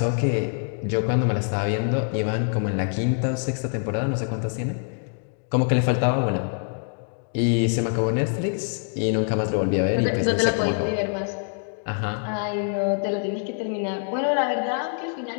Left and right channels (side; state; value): right; silent; 62 dB below the other